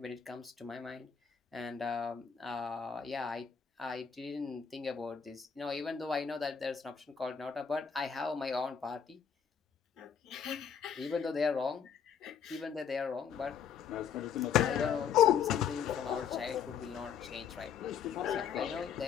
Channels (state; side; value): quieter; right; 7.3 dB